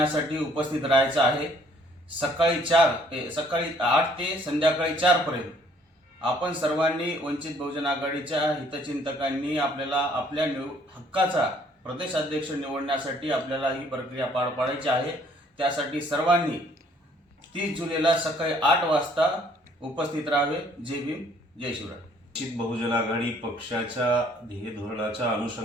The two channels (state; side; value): normal; both; correlation 0.61